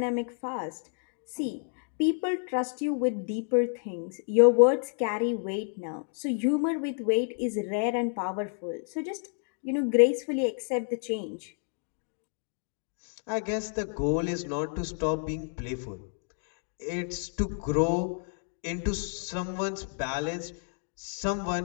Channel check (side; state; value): right; silent; 57 dB below the other